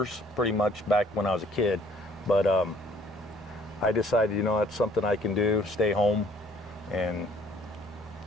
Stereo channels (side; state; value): both; normal; correlation 0.59